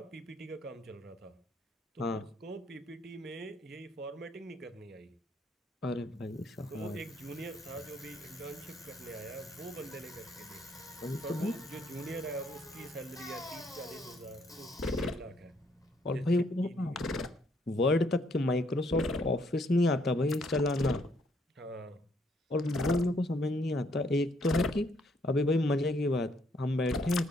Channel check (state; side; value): normal; both; correlation 0.69